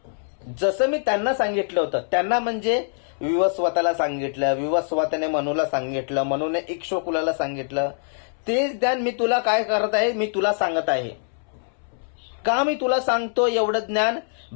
जसं मी त्यांना सांगितलं होतं, त्यांना म्हणजे विवस्वताला सांगितलं, विवस्वताने मनूला सांगितलं, मनूने इक्ष्वाकुला सांगितलं, तेच ज्ञान मी तुला काय करत आहे, मी तुला सांगत आहे. का मी तुला सांगतो एवढं ज्ञान?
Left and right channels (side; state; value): right; silent; 63 dB below the other